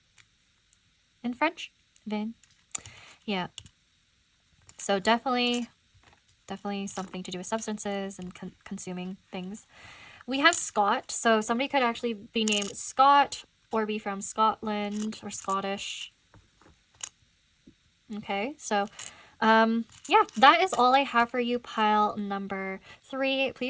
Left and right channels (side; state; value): both; identical; correlation 1.00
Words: in French. Vin. Yeah. So definitely something to do with substances and consuming things. We have Scott. So somebody could actually be named Scott or be from Scotland or Scottish. Okay, so yeah, that is all I have for you, pile number 3.